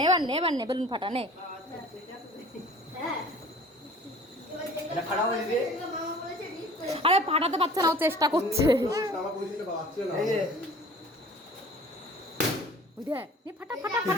এবার নে, এবার নে বেলুন ফাটা, নে। আরে ফাটাতে পারছে না, ও চেষ্টা করছে। ফাটা ফাটা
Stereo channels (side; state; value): both; normal; correlation 0.47